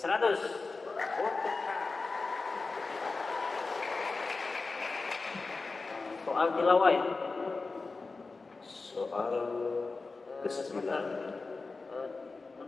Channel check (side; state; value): right; quieter; 3.9 dB